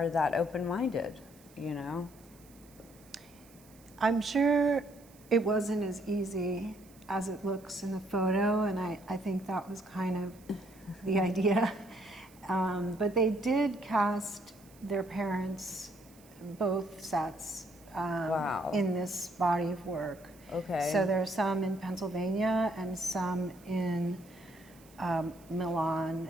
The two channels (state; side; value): noise; right; hiss, 26 dB below the sound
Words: that open-minded, I'm sure it wasn't as easy as it looks in the photo, and I think that was kind of the idea. But they did cast their parents, both sets, in this body of work. Okay. So there are some in Pennsylvania and some in Milan,